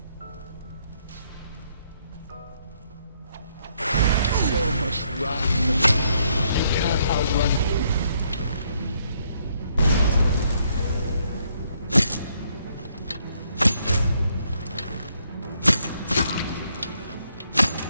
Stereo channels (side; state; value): both; inverted; correlation -0.72